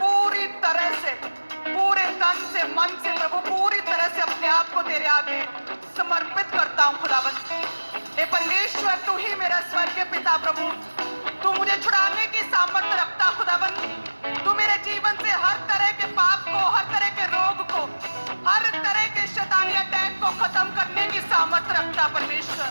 तरह से, पूरे तन से, मन से प्रभु पूरी तरह से अपने आप को तेरे आगे समर्पित करता हूँ खुदावंद। हे परमेश्वर, तू ही मेरा स्वर्गीय पिता प्रभु, तू मुझे छुड़ाने की सामर्थ्य रखता खुदावंद। तू मेरे जीवन से हर तरह के पाप को, हर तरह के रोग को, हर तरह के शैतानी अटैक को खत्म करने की सामर्थ्य रखता परमेश्वर।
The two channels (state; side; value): inverted; both; correlation -1.00